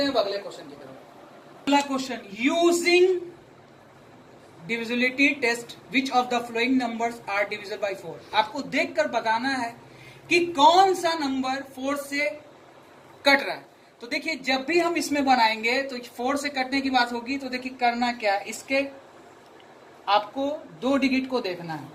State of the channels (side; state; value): both; identical; correlation 1.00